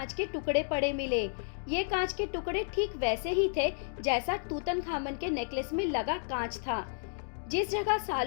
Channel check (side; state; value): right; silent; digital silence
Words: के टुकड़े पड़े मिले। ये कांच के टुकड़े ठीक वैसे ही थे जैसा तूतनखामन के नेकलेस में लगा कांच था। जिस जगह